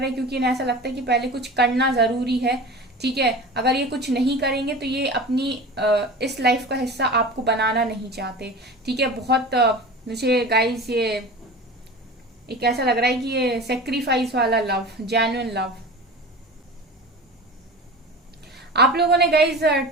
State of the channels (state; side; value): normal; both; correlation 0.34